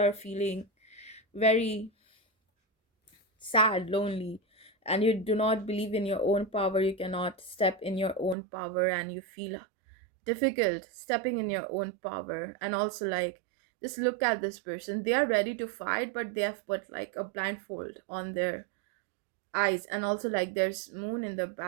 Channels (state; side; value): drops out; left; at 8.3 s